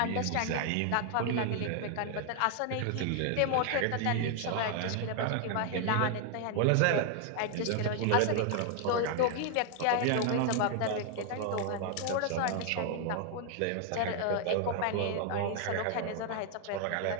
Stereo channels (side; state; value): both; different; correlation 0.00